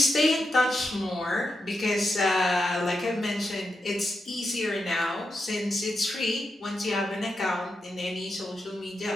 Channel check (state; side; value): normal; both; correlation 0.87